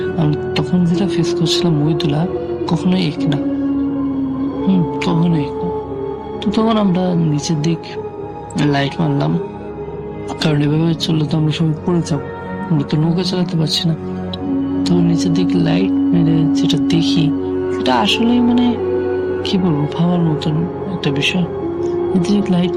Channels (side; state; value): both; identical; correlation 1.00